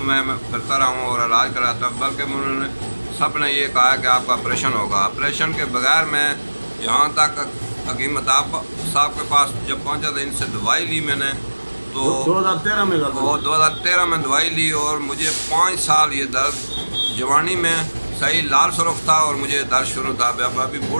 मैं फिरता रहा हूँ और इलाज कराता, बल्कि उन्होंने सब ने ये कहा कि आपका ऑपरेशन होगा। ऑपरेशन के बगैर मैं यहाँ तक हकीम मताब साहब के पास जब पहुँचा था, इनसे दवाई ली मैंने तो 2013 में 2013 में दवाई ली और मुझे 5 साल ये दर्द जवानी में सही लाल सुरख था और मुझे दर्द शुरू था। अभी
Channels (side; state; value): both; inverted; correlation -1.00